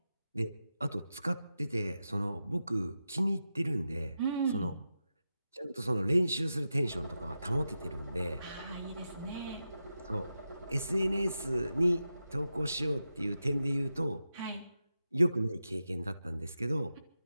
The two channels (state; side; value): inverted; both; correlation -0.90